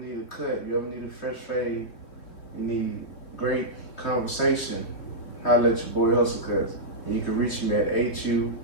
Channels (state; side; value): late; right; 3.2 ms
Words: a cut, you ever need a fresh fade, you need great conversation, holla at your boy HussleCuts. And you can reach me at